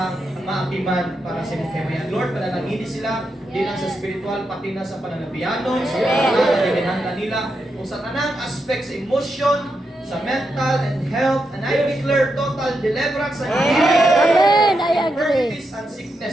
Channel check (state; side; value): normal; both; correlation 0.84